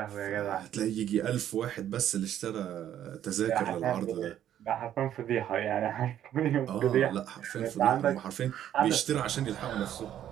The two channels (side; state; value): left; quieter; 11.0 dB